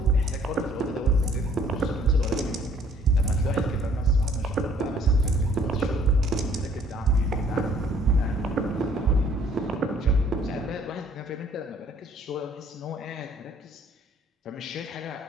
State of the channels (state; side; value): normal; both; correlation 0.60